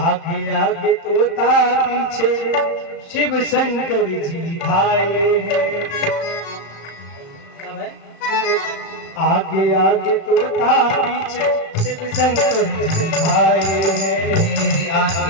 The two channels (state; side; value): late; right; 36 ms